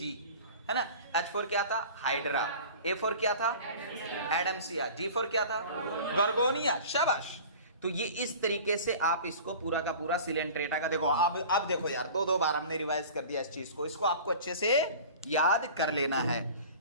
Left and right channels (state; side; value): inverted; both; correlation -0.40